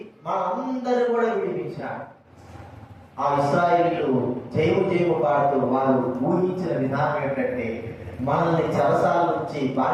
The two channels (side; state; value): both; identical; correlation 1.00